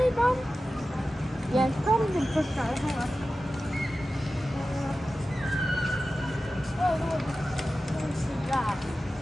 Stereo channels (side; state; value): both; normal; correlation 0.94